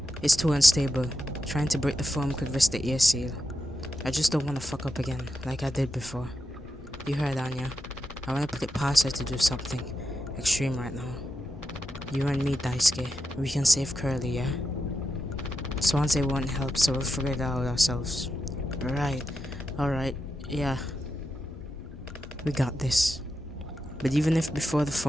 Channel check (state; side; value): normal; both; correlation 0.88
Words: is too unstable. Trying to break the foam could risk the air seal. I just don't want to fuck up again, like I did before. You heard, Anya. I want to put it past her to do something extreme right now. You and me, Daisuke. We can save Curly, yeah? Swansea won't help, so we'll figure it out ourselves. Right. Alright. Yeah. We got this. But even if before the